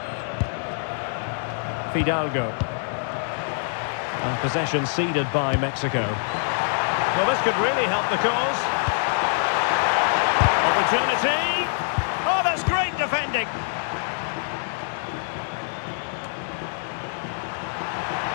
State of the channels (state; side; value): silent; right; 62 dB below the other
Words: Fidalgo. And possession ceded by Mexico. Well, this could really help the cause. Opportunity. Oh, that's great defending.